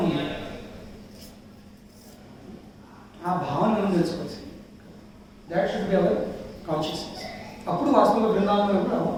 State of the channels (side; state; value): both; identical; correlation 1.00